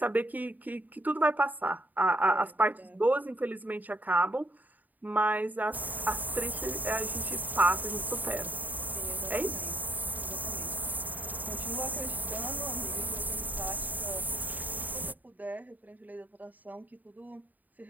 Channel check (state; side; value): late; left; 0.083 ms